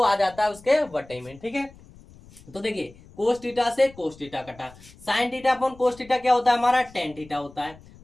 आ जाता है उसके बटे में। ठीक है, तो देखिए कोस थीटा से कोस थीटा कटा, sign theta upon cos theta क्या होता है हमारा टेन थीटा होता है,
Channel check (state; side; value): noise; left; rumble, 23 dB below the sound